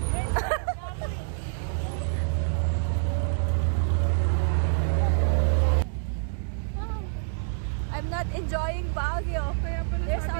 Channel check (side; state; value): left; silent; digital silence